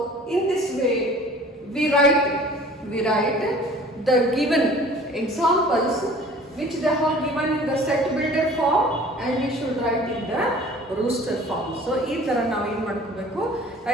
in this way we write the given examples which they have given in the set builder form, and we should write in the rooster form. So ಈ ತರ ನಾವು ಏನು ಮಾಡ್ಕೋಬೇಕು, ಆ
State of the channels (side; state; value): both; normal; correlation 0.47